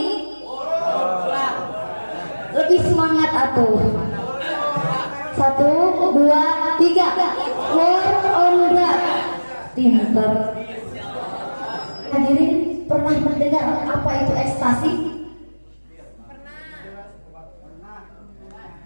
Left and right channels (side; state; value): both; inverted; correlation -1.00